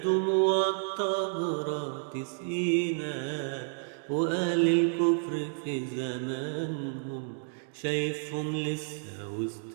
دموع الطهرة تسقينا، وأهل الكفر في زمانهم شايفهم لسه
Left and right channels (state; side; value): silent; left; digital silence